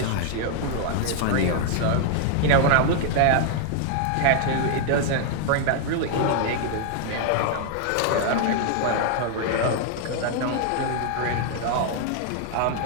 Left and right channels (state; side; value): different; both; correlation 0.00